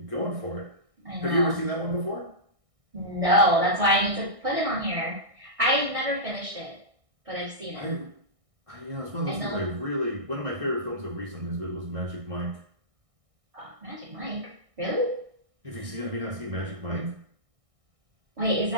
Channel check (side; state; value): left; late; 1.6 ms